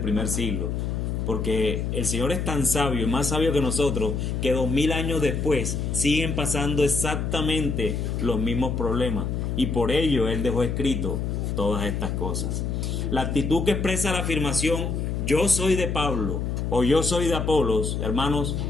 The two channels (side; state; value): left; noise; hum, 1 dB below the sound